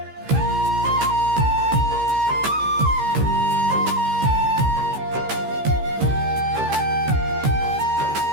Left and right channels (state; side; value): late; left; 15 ms